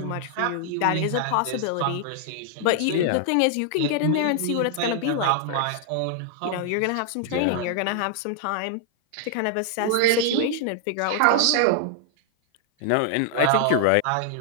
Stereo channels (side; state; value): both; different; correlation 0.00